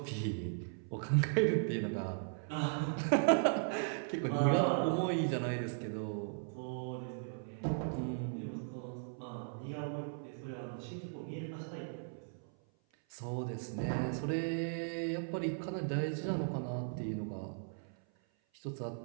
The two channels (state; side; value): silent; left; 53 dB below the other